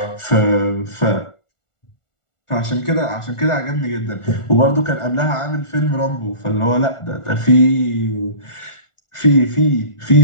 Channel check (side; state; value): right; late; 1.4 ms